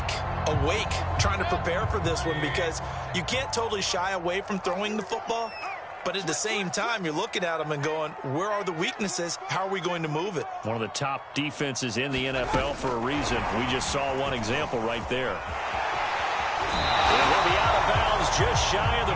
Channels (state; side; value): identical; both; correlation 1.00